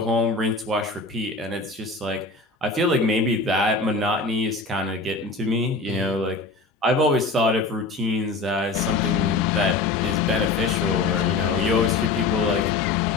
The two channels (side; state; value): right; quieter; 3.6 dB